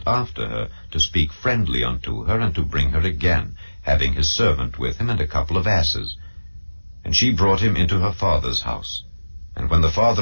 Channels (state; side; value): inverted; both; correlation -1.00